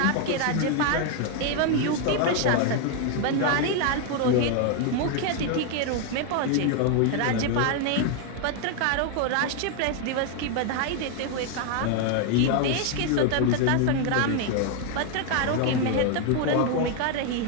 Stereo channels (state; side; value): different; both; correlation 0.01